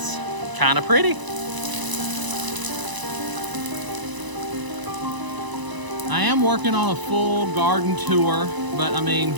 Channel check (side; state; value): left; late; 1.0 ms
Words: kind of pretty. I am working on a full garden tour, but I mean,